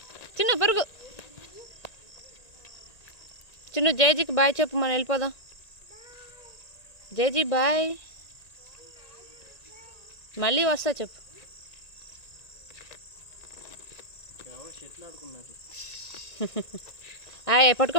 చిన్న పరుగు. చిన్న జైజీకి బాయ్ చెప్పు, మనం వెళ్ళిపోదాం. జైజీ బాయ్, మళ్ళీ వస్తా చెప్పు. ఆయ్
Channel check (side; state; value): right; late; 1.9 ms